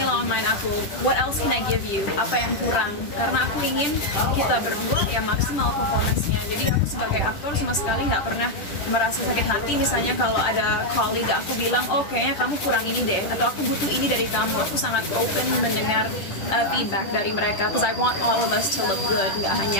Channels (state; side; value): late; right; 10 ms